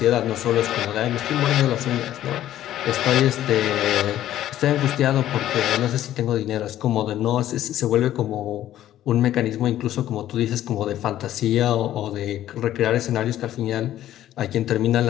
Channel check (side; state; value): right; quieter; 12.7 dB